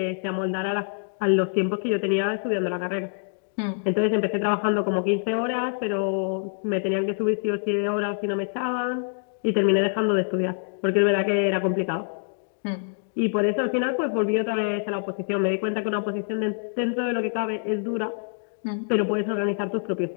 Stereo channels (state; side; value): silent; right; digital silence